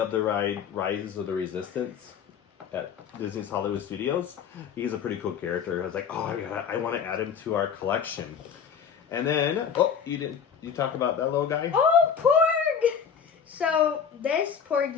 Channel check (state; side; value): quieter; right; 7.1 dB